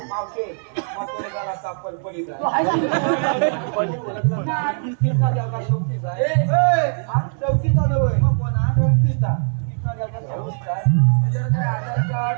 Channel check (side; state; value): left; silent; digital silence